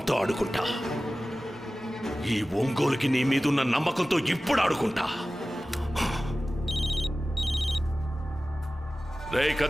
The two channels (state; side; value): normal; both; correlation 0.96